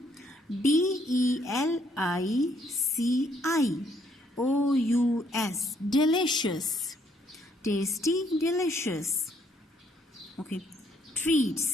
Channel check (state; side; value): normal; both; correlation 0.69